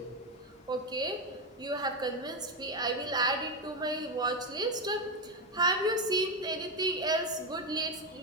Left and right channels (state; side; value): normal; both; correlation 0.10